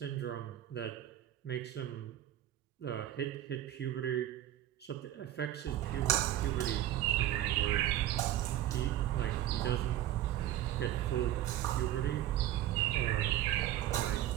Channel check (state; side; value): quieter; left; 12.8 dB